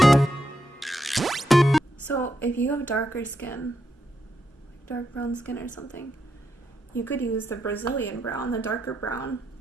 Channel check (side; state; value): both; normal; correlation 0.82